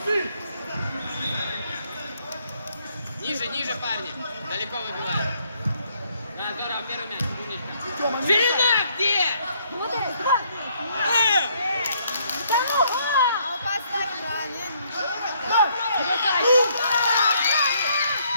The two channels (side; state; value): both; inverted; correlation -0.68